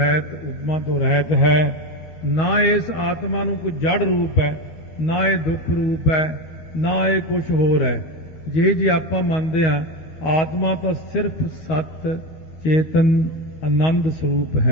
ਉਪਮਾ ਤੋਂ ਰਹਿਤ ਹੈ। ਨਾ ਇਸ ਆਤਮਾ ਨੂੰ ਕੋਈ ਜੜ ਰੂਪ ਹੈ, ਨਾ ਇਹ ਦੁੱਖ ਰੂਪ ਹੈ, ਨਾ ਇਹ ਕੁਝ ਹੋਰ ਹੈ। ਜੇ ਆਪਾਂ ਮੰਨਦੇ ਹਾਂ ਆਤਮਾ ਤਾਂ ਸਿਰਫ ਸਤ ਚੇਤਨ ਆਨੰਦ ਸਰੂਪ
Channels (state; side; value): late; right; 12 ms